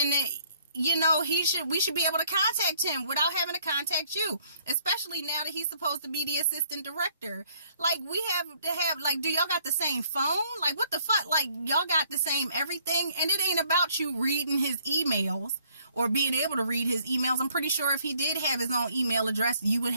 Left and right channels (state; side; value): inverted; both; correlation -0.63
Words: you know, we should be able to contact him without having to contact you, especially now that he's supposed to be the assistant director. Like, we have to have, like, do y'all got the same phone? Like, what the fuck? Like, y'all got the same everything, and it ain't about you reading his emails or being able to read his emails. I'm pretty sure if he did have his own email address, you would